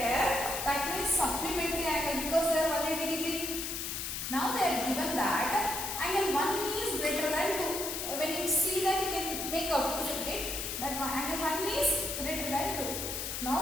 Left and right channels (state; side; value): noise; left; hiss, 4 dB below the sound